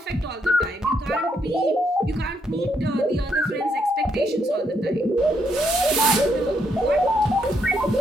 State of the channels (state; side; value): normal; both; correlation 0.75